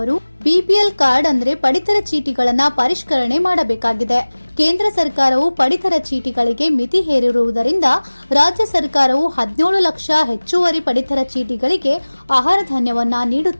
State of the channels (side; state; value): both; inverted; correlation -1.00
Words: ಬಿಪಿಎಲ್ ಕಾರ್ಡ್ ಅಂದ್ರೆ ಪಡಿತರ ಚೀಟಿಗಳನ್ನ ಪರಿಷ್ಕರಣೆ ಮಾಡಬೇಕಾಗಿದೆ. ಕೇಂದ್ರ ಸರ್ಕಾರವು ಪಡಿತರ ಚೀಟಿಗಳಿಗೆ ಮಿತಿ ಹೇರಿರುವುದರಿಂದ ರಾಜ್ಯ ಸರ್ಕಾರವು 17 ಲಕ್ಷ ಹೆಚ್ಚುವರಿ ಪಡಿತರ ಚೀಟಿಗಳಿಗೆ ಆಹಾರ ಧಾನ್ಯವನ್ನ